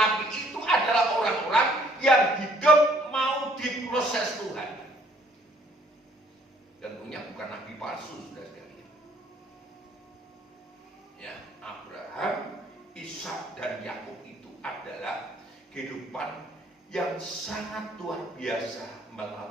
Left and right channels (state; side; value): normal; both; correlation 0.63